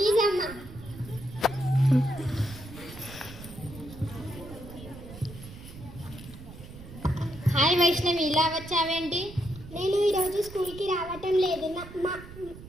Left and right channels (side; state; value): right; noise; rumble, 15 dB below the sound